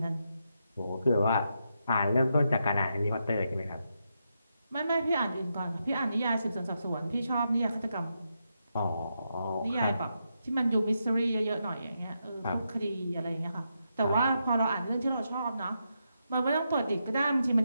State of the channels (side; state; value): both; inverted; correlation -0.83